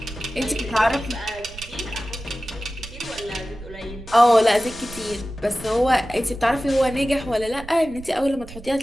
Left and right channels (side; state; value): right; noise; rumble, 16 dB below the sound